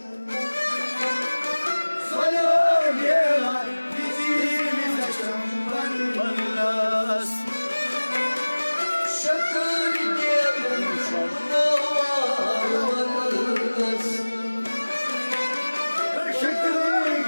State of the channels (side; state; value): both; inverted; correlation -1.00